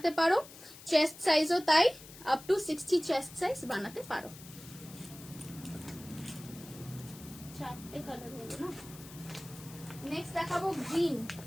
পারো, চেস্ট সাইজও তাই, আপ টু 60 চেস্ট সাইজ বানাতে পারো। চারটে কালার হলো না। নেক্সট দেখাবো গ্রিন।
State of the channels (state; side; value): noise; left; hiss, 17 dB below the sound